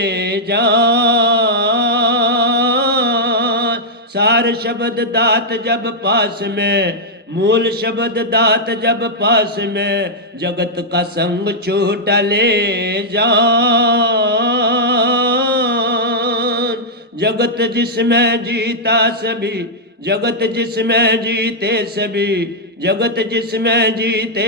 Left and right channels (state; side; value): normal; both; correlation -0.07